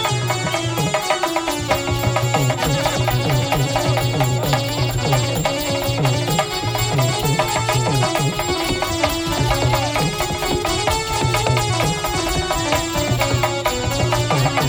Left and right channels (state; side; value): identical; both; correlation 1.00